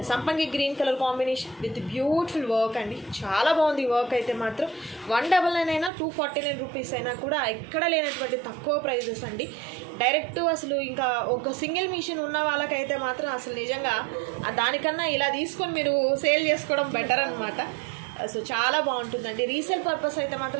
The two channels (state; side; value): drops out; left; at 5.9 s